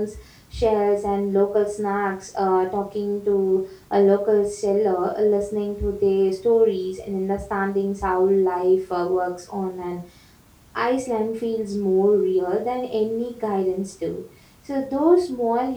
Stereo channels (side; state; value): both; identical; correlation 1.00